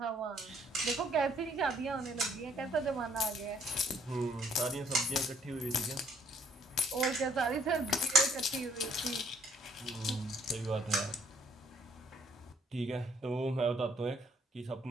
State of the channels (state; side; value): normal; both; correlation 0.64